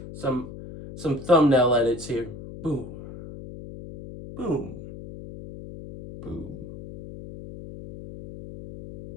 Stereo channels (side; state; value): left; noise; hum, 13 dB below the sound